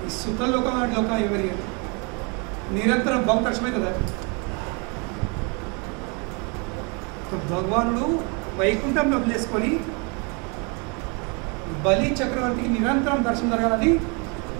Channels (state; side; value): quieter; left; 32.9 dB